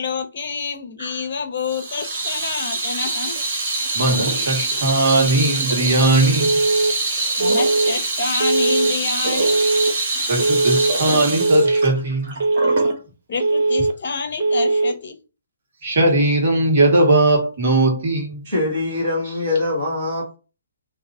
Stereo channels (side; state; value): both; inverted; correlation -0.59